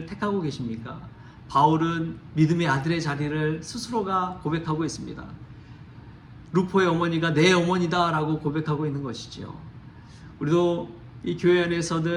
택하고 계십니까? 바울은 믿음의 아들의 자리를 스스로가 고백하고 있습니다. 루포의 어머니가 내 어머니다 라고 고백하고 있는 것이죠. 우리도 이 교회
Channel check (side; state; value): both; identical; correlation 1.00